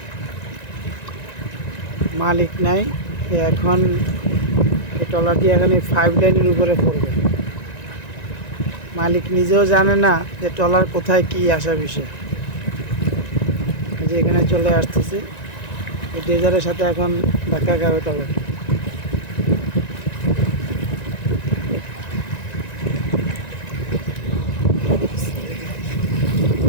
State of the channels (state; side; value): late; right; 1.9 ms